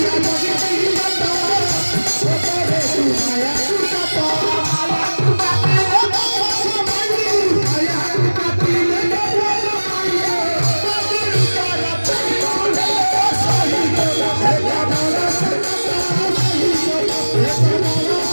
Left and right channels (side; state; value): both; inverted; correlation -1.00